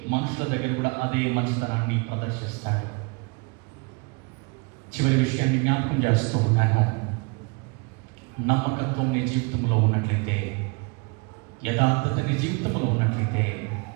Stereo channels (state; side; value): quieter; left; 30.9 dB